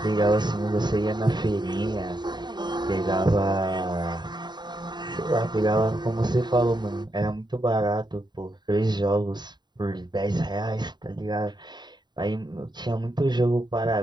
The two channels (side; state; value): left; late; 0.21 ms